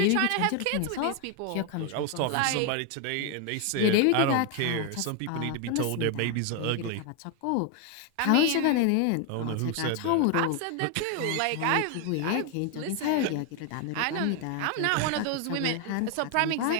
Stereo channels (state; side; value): different; both; correlation 0.01